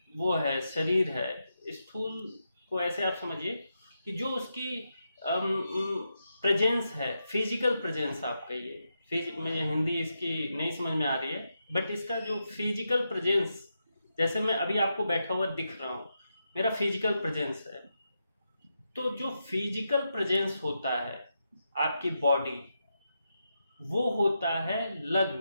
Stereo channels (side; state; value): both; inverted; correlation -0.85